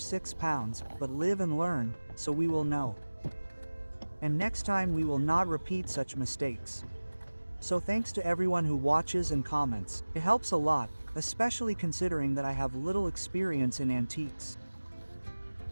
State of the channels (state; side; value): inverted; both; correlation -1.00